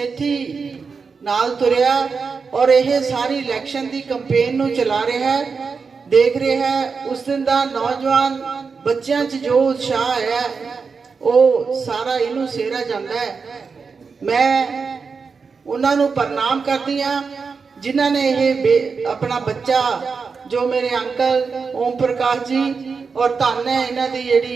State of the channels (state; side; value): quieter; left; 5.1 dB